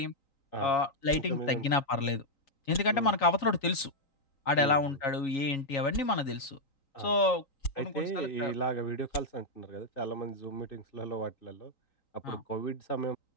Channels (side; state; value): right; late; 3.9 ms